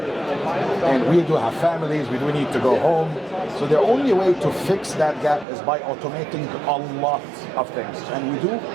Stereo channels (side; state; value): left; drops out; at 5.5 s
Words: and we do have families, we do need to go home. So the only way to fix that gap is by automating a lot of things. And we do